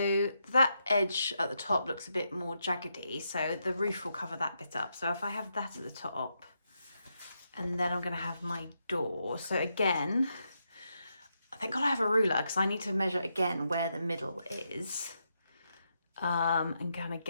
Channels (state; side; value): inverted; both; correlation -0.82